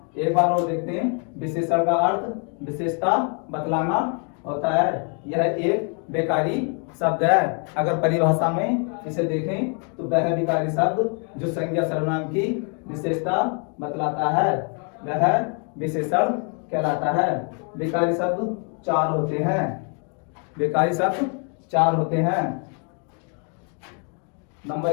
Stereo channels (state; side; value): quieter; right; 39.7 dB